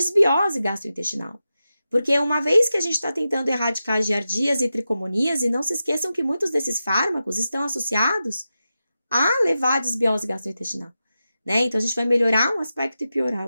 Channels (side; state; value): both; inverted; correlation -0.91